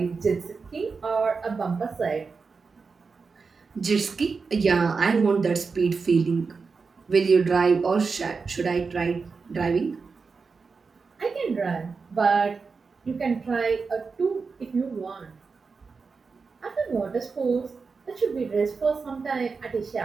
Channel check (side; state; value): left; quieter; 4.8 dB